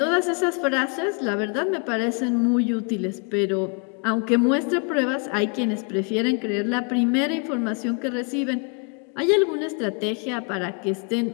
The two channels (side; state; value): right; quieter; 35.8 dB